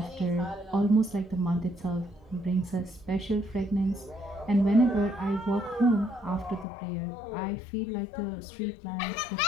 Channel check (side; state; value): right; drops out; at 6.7 s